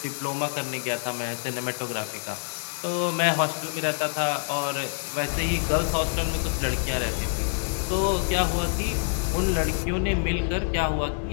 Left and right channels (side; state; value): right; silent; 61 dB below the other